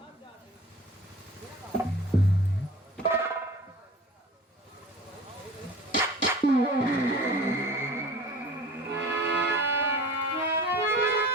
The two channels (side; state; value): both; normal; correlation 0.41